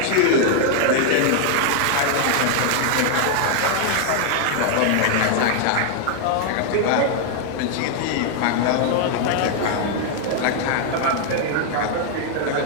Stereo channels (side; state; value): both; different; correlation 0.00